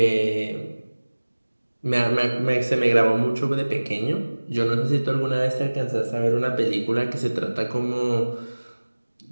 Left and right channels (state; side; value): inverted; both; correlation -1.00